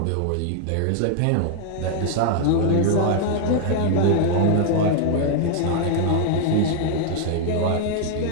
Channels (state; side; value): different; both; correlation 0.00